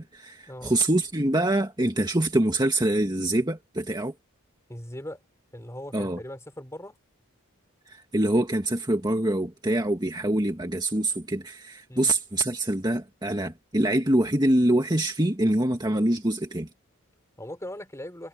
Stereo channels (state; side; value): normal; both; correlation 0.76